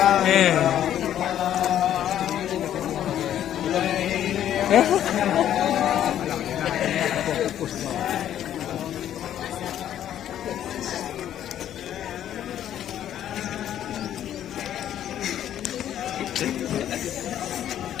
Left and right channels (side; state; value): right; quieter; 11.0 dB